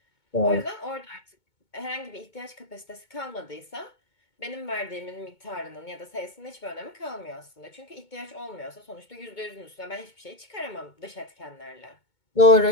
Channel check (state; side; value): late; right; 2.2 ms